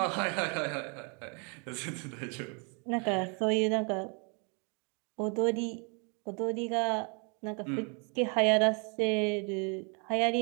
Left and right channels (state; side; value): quieter; left; 35.7 dB